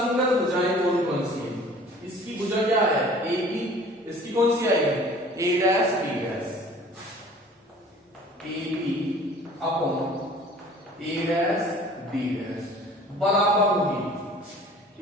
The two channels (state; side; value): normal; both; correlation 0.48